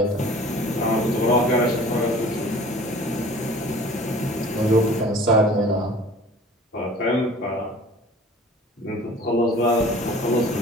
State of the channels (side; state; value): both; normal; correlation 0.46